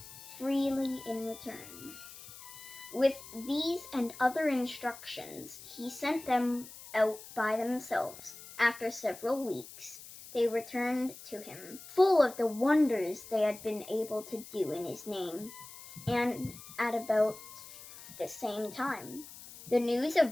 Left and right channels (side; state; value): left; noise; hiss, 16 dB below the sound